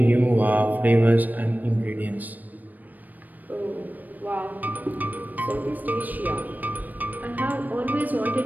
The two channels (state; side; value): late; left; 0.084 ms